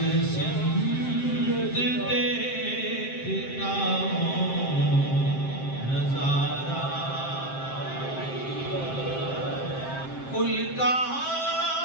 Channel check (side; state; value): right; late; 7.6 ms